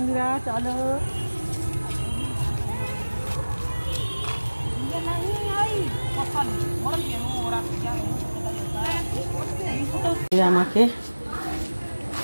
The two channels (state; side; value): inverted; both; correlation -1.00